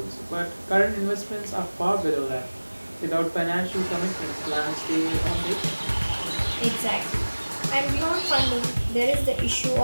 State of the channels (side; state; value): both; inverted; correlation -1.00